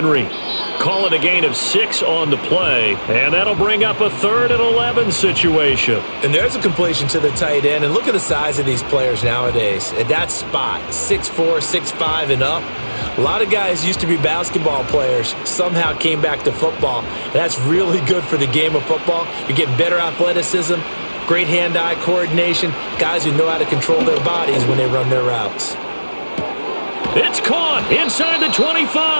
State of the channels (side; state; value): both; inverted; correlation -1.00